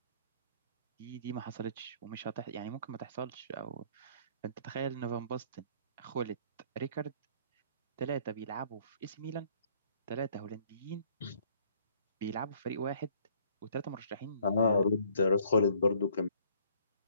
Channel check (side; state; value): both; inverted; correlation -0.61